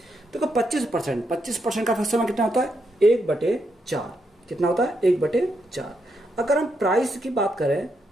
देखो 25% का फैक्टर कितना होता है 1/4। कितना होता है 1/4। अगर हम प्राइस की बात करें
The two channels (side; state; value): both; normal; correlation 0.80